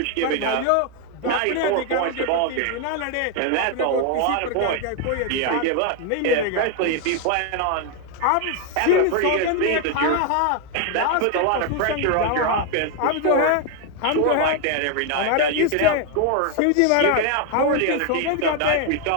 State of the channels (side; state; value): both; different; correlation 0.01